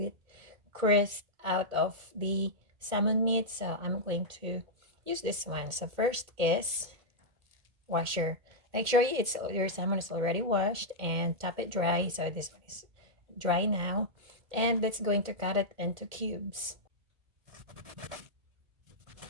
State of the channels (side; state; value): left; late; 2.1 ms